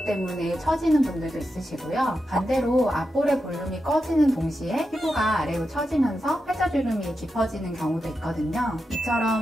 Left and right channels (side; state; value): both; normal; correlation 0.88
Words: 때문에 처지는 분들도 있으시고요. 반대로 앞볼의 볼륨이 꺼지는 동시에 피부가 아래로 처지면서 팔자주름이 깊어지는 경우도 있거든요.